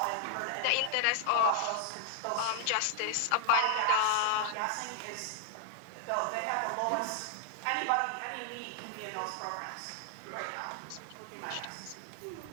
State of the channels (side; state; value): both; different; correlation 0.00